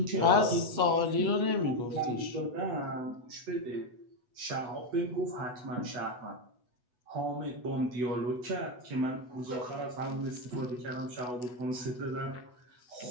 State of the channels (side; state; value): left; late; 8.1 ms